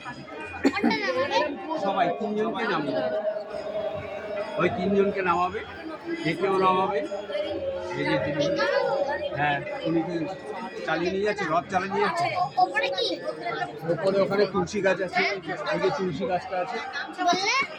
কোনটা নামাবে? সবাই তিনজনকে নামাবে, ওই তিনজনকে নামাবে, দেখেও নামাবে। এই যে তিনি, হ্যাঁ, উনি কি চালিয়ে নিয়ে যাচ্ছে, রথ চালিয়ে নিয়ে যাচ্ছে। ওপরে কি ওপরে ওখানে তুলসী গাছ আছে, ওই যে তুলসী গাছটা আছে, বললে?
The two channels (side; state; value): both; identical; correlation 1.00